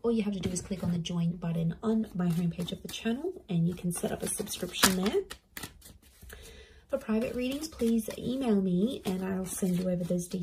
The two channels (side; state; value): both; identical; correlation 1.00